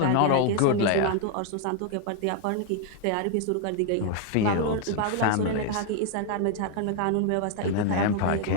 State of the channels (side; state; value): both; different; correlation 0.00